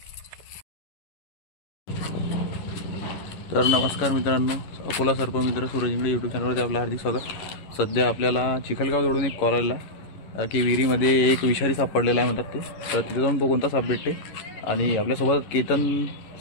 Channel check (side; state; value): right; late; 11 ms